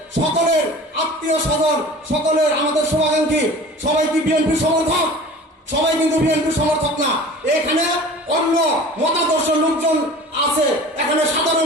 সকলের আত্মীয় স্বজন, সকলের আমাদের শুভাকাঙ্ক্ষী সবাই কি বিএনপি সমর্থক? সবাই কিন্তু বিএনপি সমর্থক না। এখানে অন্য মতাদর্শ লোকজন আছে, এখানে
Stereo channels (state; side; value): normal; both; correlation 0.41